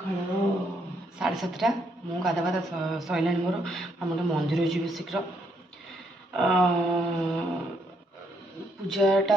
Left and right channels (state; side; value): normal; both; correlation 0.73